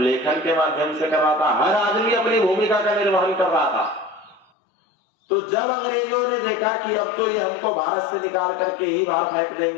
के माध्यम से कर रहा था। हर आदमी अपनी भूमिका का निर्वहन कर रहा था। तो जब अंग्रेजों ने देखा कि अब तो ये हमको भारत से निकाल करके ही बाहर फेंक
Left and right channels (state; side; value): drops out; right; at 4.5 s